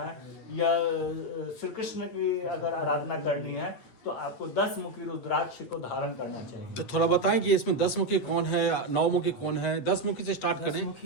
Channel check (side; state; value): right; late; 8.3 ms